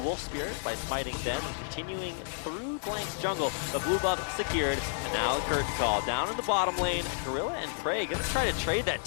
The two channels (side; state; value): right; silent; digital silence